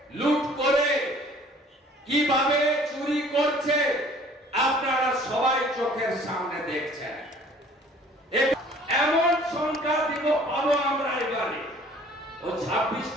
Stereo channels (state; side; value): normal; both; correlation 0.52